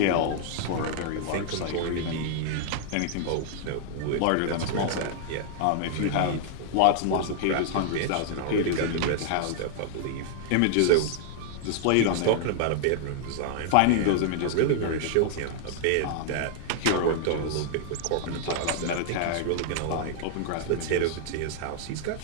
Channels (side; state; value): both; different; correlation -0.01